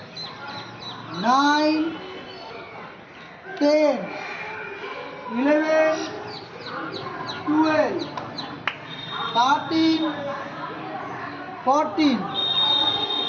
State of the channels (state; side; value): identical; both; correlation 1.00